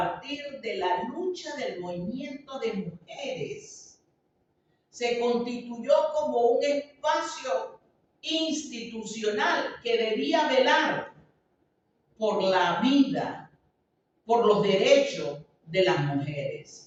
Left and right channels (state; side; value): identical; both; correlation 1.00